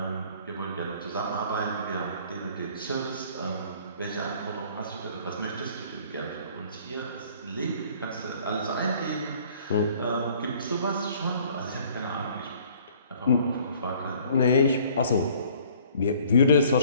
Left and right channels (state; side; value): inverted; both; correlation -0.55